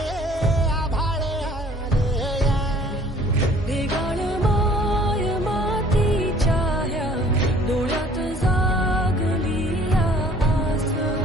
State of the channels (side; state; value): both; normal; correlation 0.54